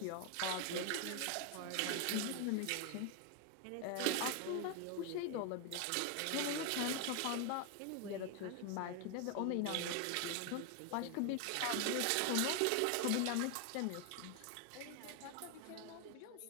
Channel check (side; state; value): both; different; correlation 0.01